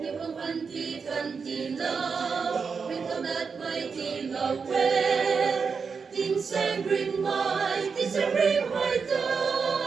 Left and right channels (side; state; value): left; quieter; 5.5 dB